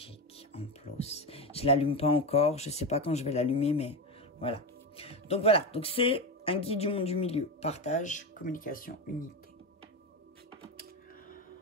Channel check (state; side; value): normal; both; correlation 0.16